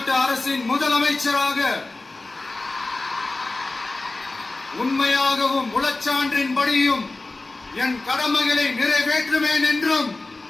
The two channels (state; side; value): quieter; right; 3.2 dB